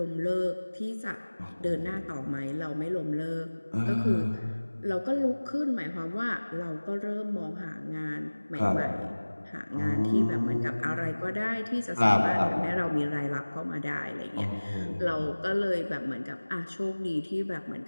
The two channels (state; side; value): inverted; both; correlation -1.00